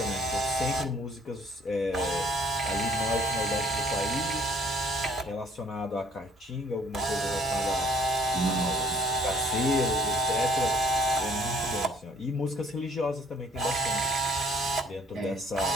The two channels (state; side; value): normal; both; correlation 0.60